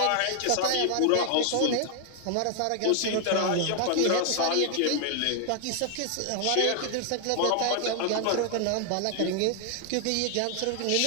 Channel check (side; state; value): both; different; correlation 0.00